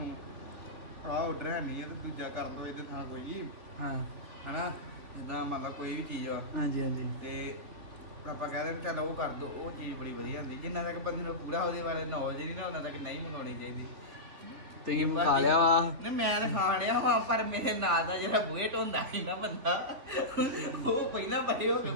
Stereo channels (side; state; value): left; late; 3.5 ms